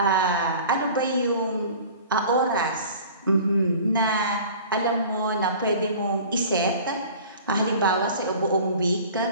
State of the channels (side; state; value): both; inverted; correlation -0.43